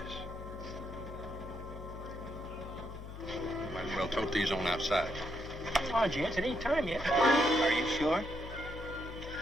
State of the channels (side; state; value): left; noise; hum, 11 dB below the sound